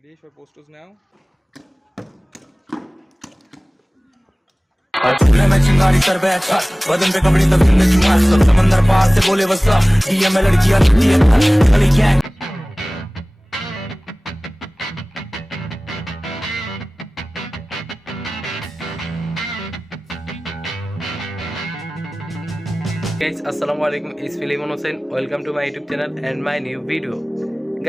for posters now? चूल्हे में चिंगारी कर बैठा बदन पे कपड़े तब में चुमार सब समंदर पार से बोले वसा डीएम में लड़कियां लगती है गली gang Guys, assalamu alaikum. It's Filimon Hussain. Welcome to my YouTube channel and my new video.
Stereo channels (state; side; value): normal; both; correlation 0.98